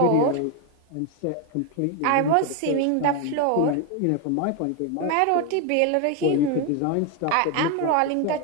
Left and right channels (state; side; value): different; both; correlation 0.01